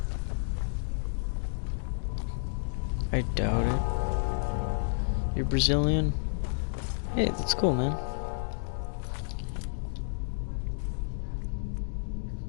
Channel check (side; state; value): right; silent; digital silence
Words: I doubt it. You're Brazilian? Hey, that's cool, man.